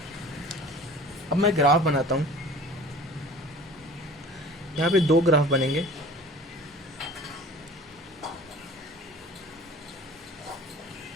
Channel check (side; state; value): both; normal; correlation 0.44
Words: अब मैं ग्राफ बनाता हूँ, यहाँ पे 2 ग्राफ बनेंगे।